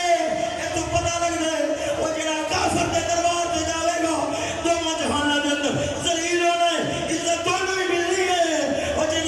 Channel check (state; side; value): identical; both; correlation 1.00